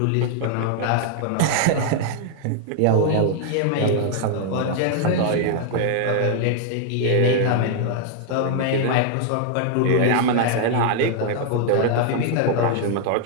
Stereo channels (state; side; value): different; both; correlation 0.00